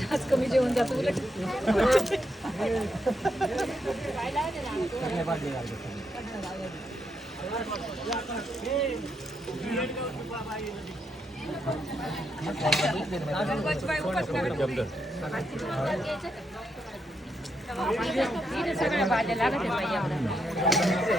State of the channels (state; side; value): normal; both; correlation 0.80